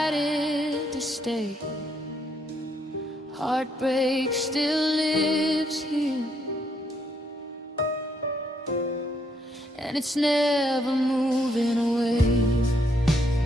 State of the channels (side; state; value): both; normal; correlation 0.73